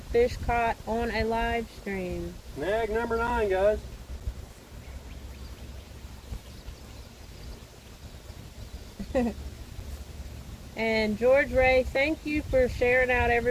fish caught on a live stream. Snag number 9, guys. And George Ray, thank you for sharing out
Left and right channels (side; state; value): both; identical; correlation 1.00